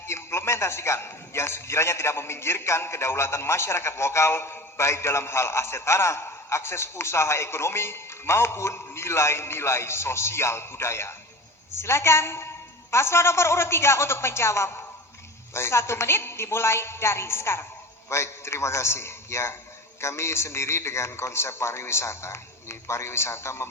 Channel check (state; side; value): normal; both; correlation 0.34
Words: yang sekiranya tidak meminggirkan kedaulatan masyarakat lokal baik dalam hal aset tanah, akses usaha ekonomi maupun nilai-nilai sosial budaya? Silakan paslon nomor urut 3 untuk menjawab. Baik. 1 menit dimulai dari sekarang. Baik, terima kasih. Ya, kami sendiri dengan konsep pariwisata. Ini pariwisata